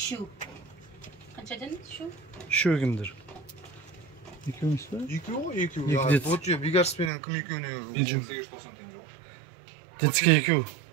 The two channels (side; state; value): left; drops out; at 7.1 s